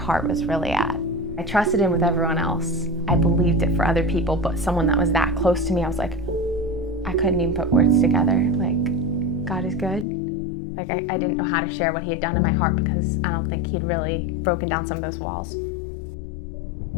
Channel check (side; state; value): right; drops out; at 10.1 s